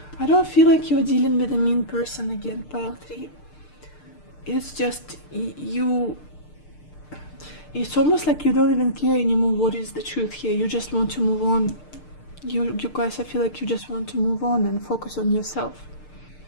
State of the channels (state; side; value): late; right; 6.6 ms